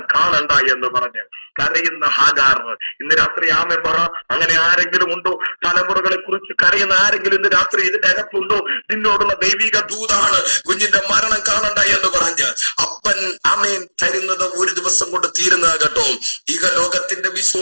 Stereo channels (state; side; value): inverted; both; correlation -1.00